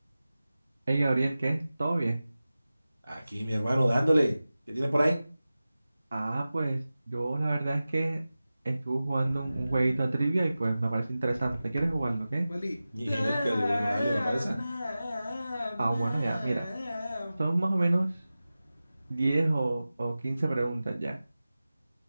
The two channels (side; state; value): both; inverted; correlation -0.96